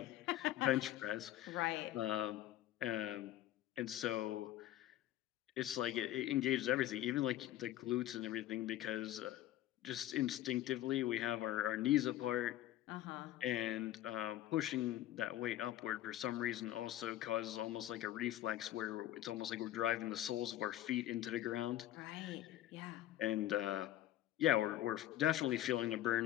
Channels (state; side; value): quieter; right; 13.7 dB